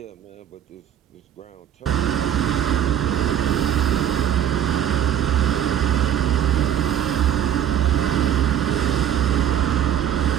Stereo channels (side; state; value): left; quieter; 10.1 dB